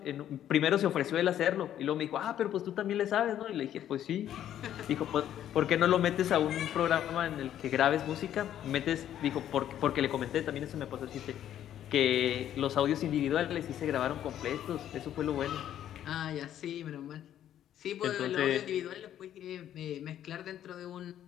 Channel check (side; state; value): right; quieter; 11.0 dB